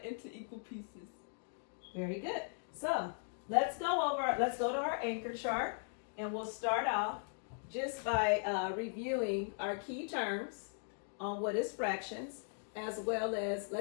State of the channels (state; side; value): silent; right; digital silence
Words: into equal pieces. Very good. So let's go to our anchor chart, and we'll start off just by reviewing our key terms on what is fractions, as well as,